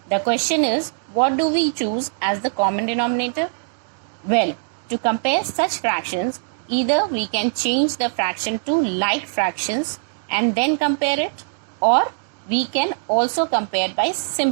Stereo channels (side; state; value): left; silent; digital silence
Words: The question is, what do we choose as the common denominator? Well, to compare such fractions, either we can change the fraction to like fractions and then compare it, or we can also compare by